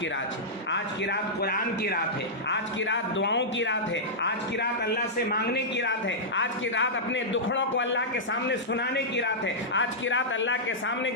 رات ہے، آج کی رات قرآن کی رات ہے، آج کی رات دعاؤں کی رات ہے، آج کی رات اللہ سے مانگنے کی رات ہے، آج کی رات اپنے دکھڑوں کو اللہ کے سامنے سنانے کی رات ہے، آج کی رات اللہ کے سامنے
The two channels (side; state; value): both; normal; correlation -0.11